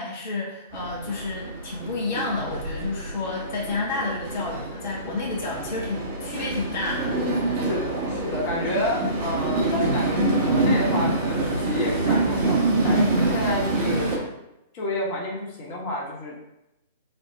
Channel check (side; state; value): both; inverted; correlation -0.43